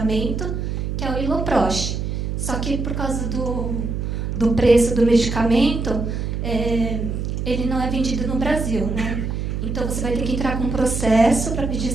que é o Iloprost. Só que por causa do preço do medicamento, ele não é vendido no Brasil, né? Então você vai ter que entrar com um processo para pedir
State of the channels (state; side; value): noise; right; hum, 3 dB below the sound